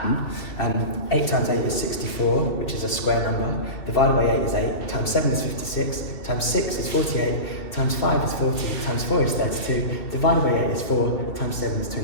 8 times 8 is 64, which is a square number. Divided by 8 is 8. Times 7 is 56. Times 6 is 48. times 5 is 40, times 4 is 32, divided by 8 is 4, times 7 is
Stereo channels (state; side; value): late; right; 2.7 ms